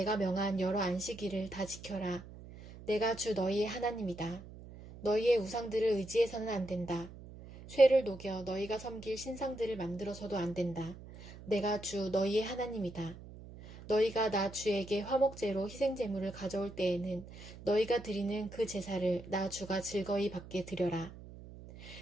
명한 여러 안식일을 다 지켜라. 내가 주 너희의 하나님이다. 너희의 우상들을 의지해서는 안 된다. 쇠를 녹여 너희가 섬길 신상들을 만들어서도 안 된다. 내가 주 너희의 하나님이다. 너희가 나 주에게 화목제로 희생제물을 가져올 때에는 너희가 드리는 그 제사를 나 주가 즐거이 받게 드려라.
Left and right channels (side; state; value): right; noise; hum, 16 dB below the sound